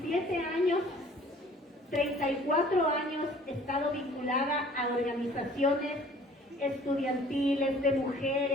años, 34 años he estado vinculada a organizaciones estudiantiles, de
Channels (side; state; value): both; normal; correlation 0.52